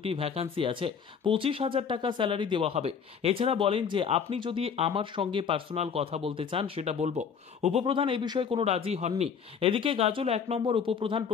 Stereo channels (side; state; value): right; quieter; 6.7 dB